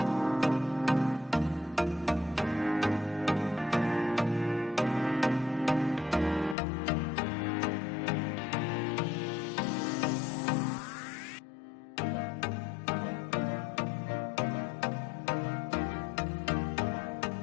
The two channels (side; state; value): right; drops out; at 6.6 s